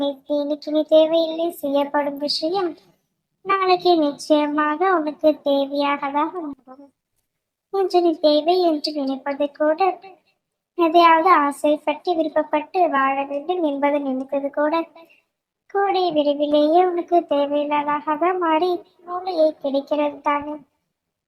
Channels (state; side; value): identical; both; correlation 1.00